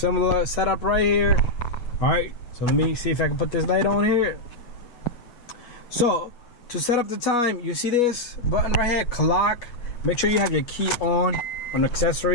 setup right here. Alright, so let me see if I can put this light on here. So, to set up the time, you see this button right here, clock. Make sure you have your key on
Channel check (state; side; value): late; right; 8.3 ms